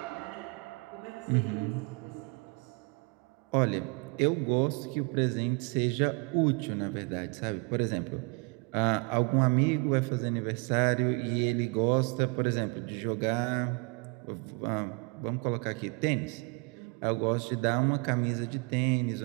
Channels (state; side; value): quieter; left; 31.6 dB